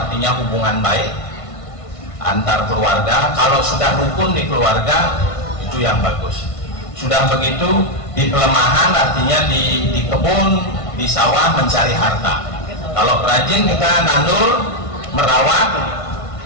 hubungan baik antar keluarga. Kalau sudah rukun di keluarga, itu yang bagus. Sudah begitu di pelemahan, artinya di kebun, di sawah mencari harta. Kalau rajin kita nandur, merawat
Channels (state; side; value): late; right; 1.5 ms